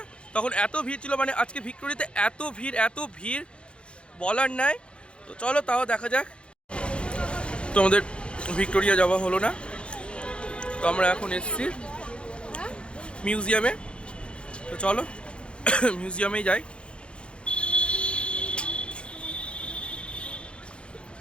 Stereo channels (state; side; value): late; right; 0.057 ms